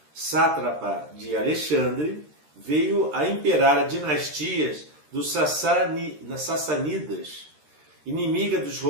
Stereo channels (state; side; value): late; left; 13 ms